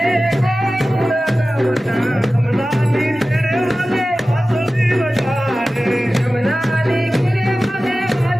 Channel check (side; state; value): both; normal; correlation 0.96